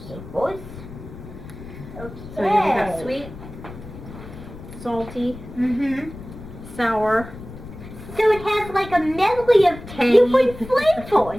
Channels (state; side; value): noise; left; rumble, 14 dB below the sound